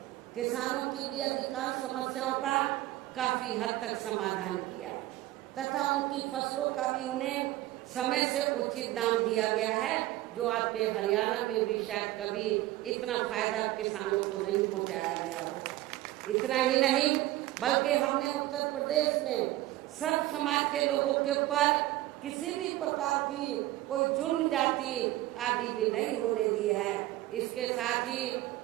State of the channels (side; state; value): left; quieter; 16.2 dB